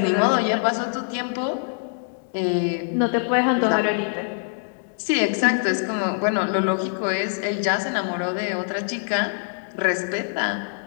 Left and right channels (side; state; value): right; silent; 63 dB below the other